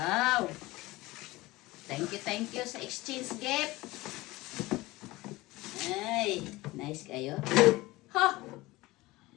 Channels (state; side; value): quieter; right; 20.0 dB